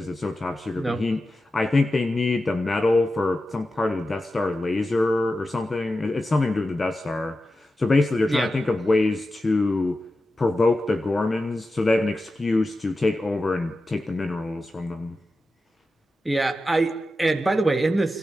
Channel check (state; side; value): normal; both; correlation 0.92